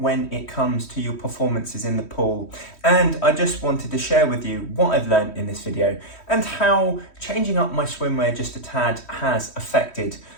when it comes to your performances in the pool. And I just wanted to share with you what I've learned in this video and how changing up my swimwear just a tad has affected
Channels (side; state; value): right; late; 3.1 ms